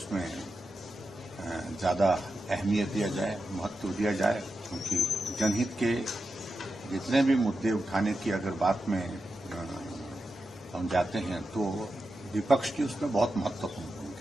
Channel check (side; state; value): both; normal; correlation 0.89